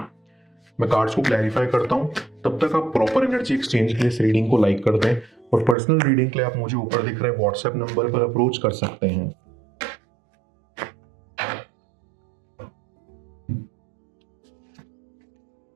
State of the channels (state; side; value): drops out; left; at 5.8 s